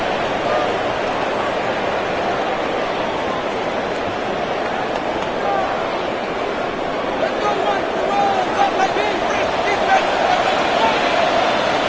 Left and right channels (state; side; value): identical; both; correlation 1.00